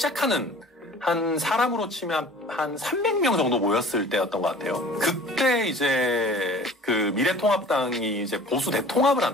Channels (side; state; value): both; normal; correlation 0.46